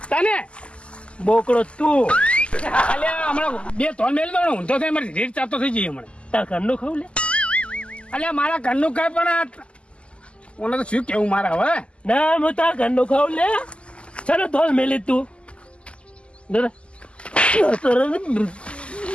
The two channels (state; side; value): late; right; 0.055 ms